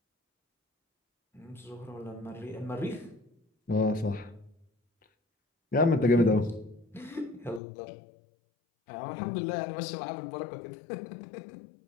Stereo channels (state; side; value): drops out; right; at 7.6 s